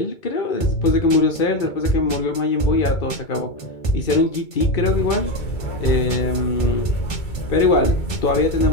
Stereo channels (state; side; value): late; right; 2.3 ms